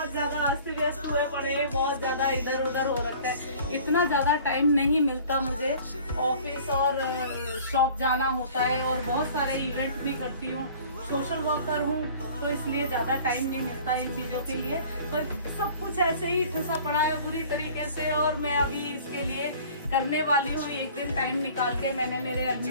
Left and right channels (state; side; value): inverted; both; correlation -0.47